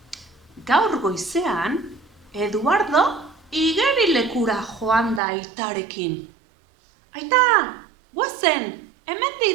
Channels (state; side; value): drops out; left; at 5.2 s